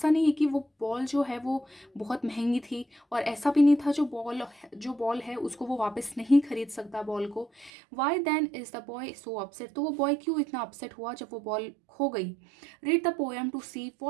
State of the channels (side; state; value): left; drops out; at 7.7 s